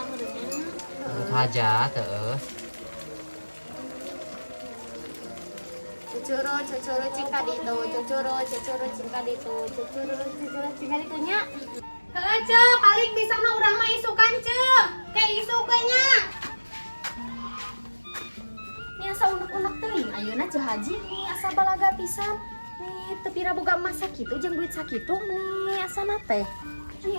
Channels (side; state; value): both; inverted; correlation -1.00